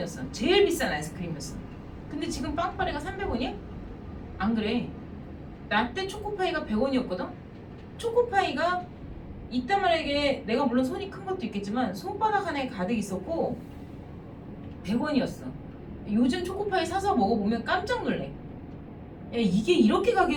제일 비싼 아이스크림이었어. 근데 지금 빵빠레가 300원이야? 안 그래. 나 때 초코파이가 100원이었거든? 초코파이가 이따 말하게 내가 물론 손이 큰 것도 있겠지만 손바닥 하나에 가득 있었고 100원이었어. 요즘 초코파이 사서 먹어보면 깜짝 놀래. 야, 이게 이렇게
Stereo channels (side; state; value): both; identical; correlation 1.00